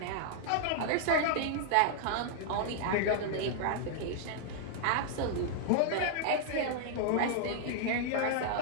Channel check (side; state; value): both; different; correlation 0.00